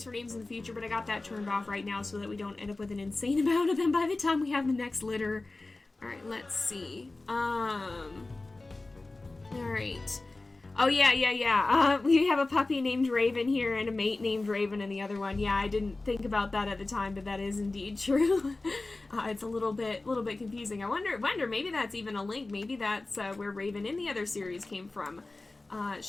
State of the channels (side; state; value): right; quieter; 3.2 dB